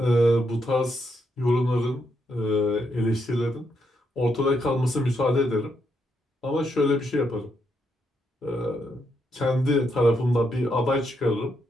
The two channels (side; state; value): both; normal; correlation 0.79